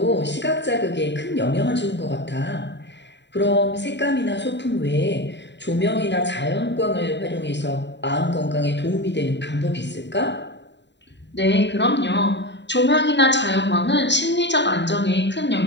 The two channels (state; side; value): late; right; 0.52 ms